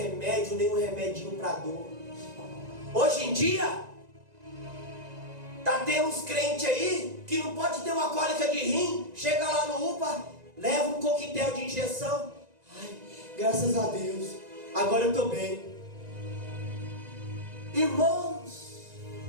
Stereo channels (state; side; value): late; left; 1.9 ms